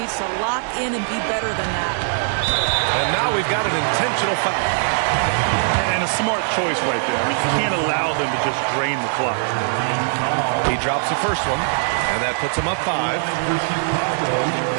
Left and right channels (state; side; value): silent; left; 65 dB below the other